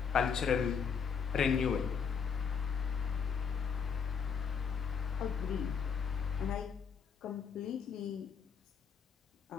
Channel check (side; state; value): right; quieter; 6.6 dB